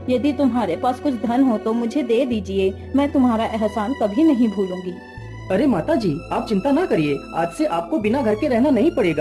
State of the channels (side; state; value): both; identical; correlation 1.00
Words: यदि तुम्हारे पास कुछ धन हो तो मुझे दे दीजिए। मैं तुम्हारा एहसान कभी नहीं भूलूंगी। अरे माता जी, आप चिंता ना करिए, आज से आपको बिना घर के रहना नहीं